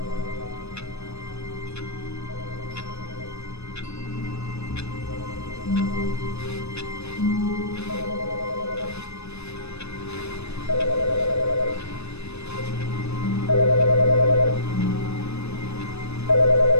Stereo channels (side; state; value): right; late; 0.80 ms